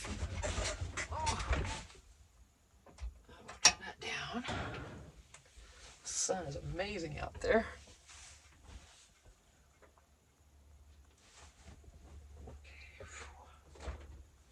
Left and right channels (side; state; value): both; identical; correlation 1.00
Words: Oh. Turn that down. The sun is amazing out there.